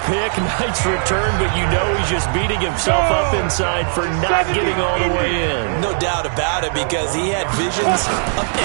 pick, nice return, but you know he's just beating himself up inside for not getting all the way in. No doubt about it, because he had visions of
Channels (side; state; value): left; silent; digital silence